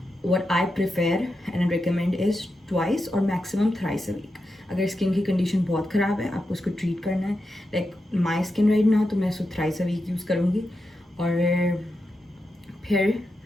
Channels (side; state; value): both; normal; correlation 0.88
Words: what I prefer and recommend is twice or maximum thrice a week. अगर स्किन की कंडीशन बहुत ख़राब है, आपको उसको ट्रीट करना है, like my skin right now, तो मैं उसको थ्राइस अ वीक यूज़ करूँगी। और फिर